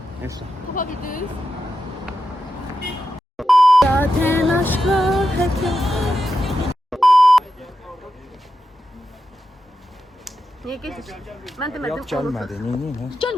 Neyse. Tapa bildiniz? Zaten aşkla niye getir? Ben demedim. Yok gelmedi. Niye?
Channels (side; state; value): both; normal; correlation 0.89